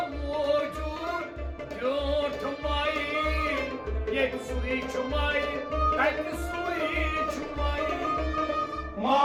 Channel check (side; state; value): both; identical; correlation 1.00